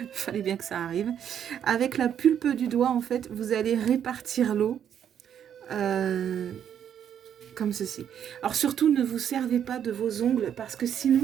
fallait bien que ça arrive. Avec la pulpe du doigt, en fait, vous allez répartir l'eau comme ceci. Alors surtout, ne vous servez pas de vos ongles parce que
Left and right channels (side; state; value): left; quieter; 9.1 dB